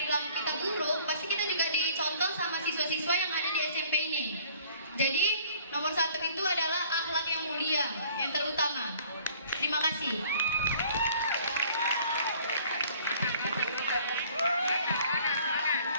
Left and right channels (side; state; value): both; inverted; correlation -0.54